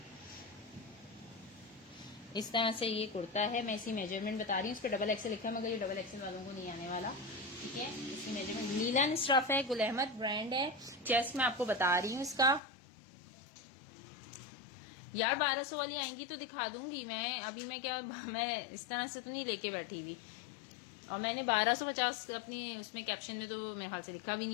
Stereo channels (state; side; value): drops out; right; at 12.6 s